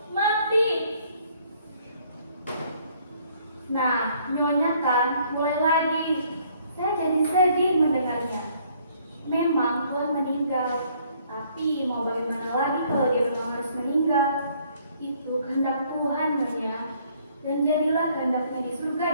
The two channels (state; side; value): inverted; both; correlation -0.64